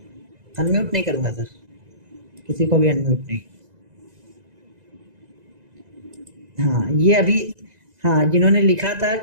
अनम्यूट नहीं करूंगा सर, किसी को भी अनम्यूट नहीं। हाँ ये अभी, हाँ जिन्होंने लिखा था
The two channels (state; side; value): late; left; 2.0 ms